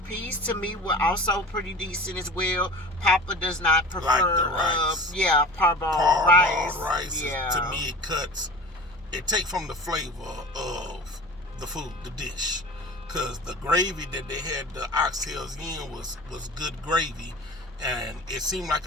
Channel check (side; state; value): both; normal; correlation 0.37